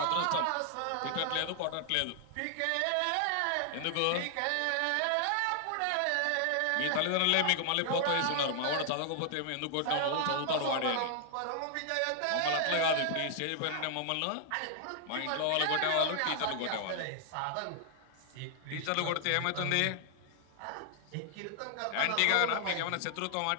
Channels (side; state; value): both; different; correlation 0.00